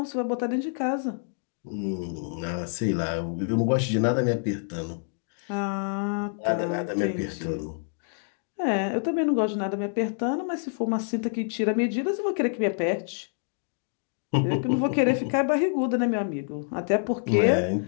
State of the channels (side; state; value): right; silent; digital silence